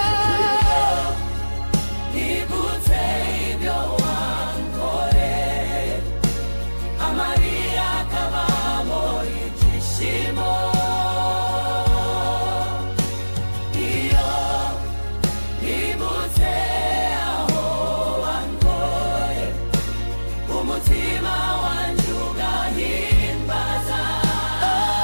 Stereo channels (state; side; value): inverted; both; correlation -1.00